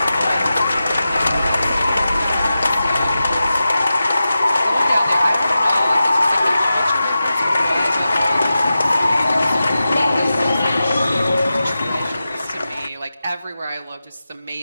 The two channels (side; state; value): both; inverted; correlation -0.92